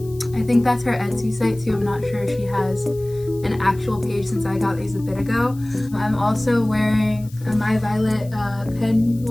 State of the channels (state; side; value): noise; left; hiss, 24 dB below the sound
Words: I think that's her Etsy site too. I'm not sure if she has an actual page since I got these a bit ago. I'm also wearing my violet